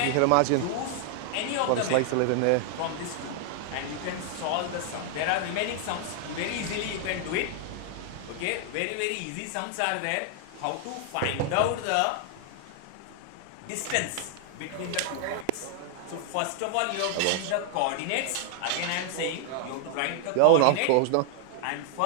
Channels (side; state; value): both; different; correlation 0.00